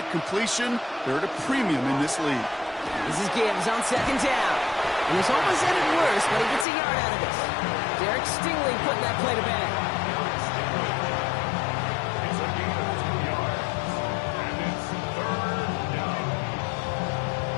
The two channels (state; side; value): drops out; right; at 6.7 s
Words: completion. They're at a premium in this league. This is Gibbs on 2nd down. And this almost ended worse, but he gets a yard out of this. Derek Stingley putting that play to bed. It's a gain of 2 yards. And it's 3rd down.